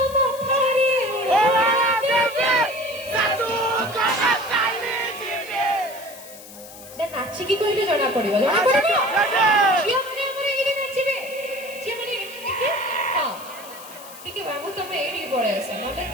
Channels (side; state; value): left; noise; hiss, 17 dB below the sound